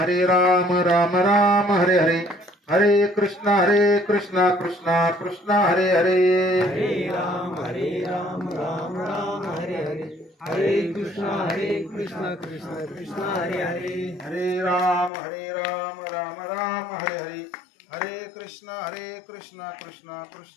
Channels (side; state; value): right; drops out; at 15.1 s